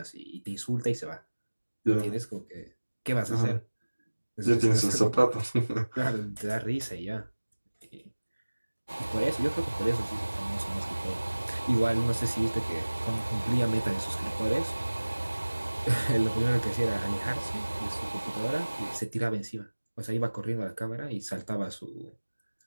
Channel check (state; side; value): inverted; both; correlation -1.00